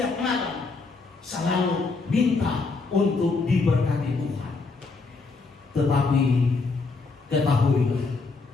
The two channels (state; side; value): quieter; right; 4.1 dB